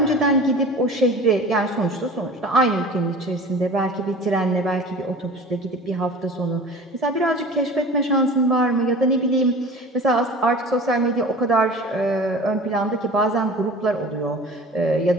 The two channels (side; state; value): both; normal; correlation 0.39